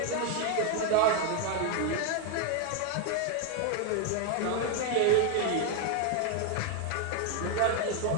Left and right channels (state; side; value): different; both; correlation 0.01